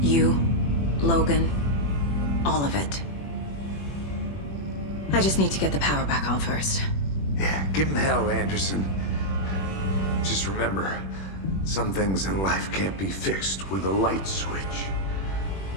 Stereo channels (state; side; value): late; right; 21 ms